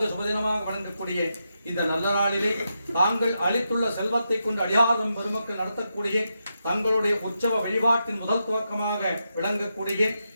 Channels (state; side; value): inverted; both; correlation -0.85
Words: சுபதினமாக வழங்கக்கூடிய இந்த நல்ல நாளிலே தாங்கள் அளித்துள்ள செல்வத்தை கொண்டு அடியாதம் பெருமக்கள் நடத்தக்கூடிய தங்களுடைய உற்சவ வழிபாட்டின் முதல் துவக்கமாக விளங்கக்கூடிய